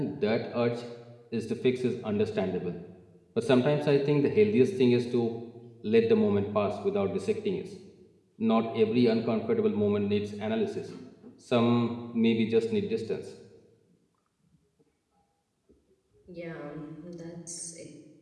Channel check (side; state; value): both; identical; correlation 1.00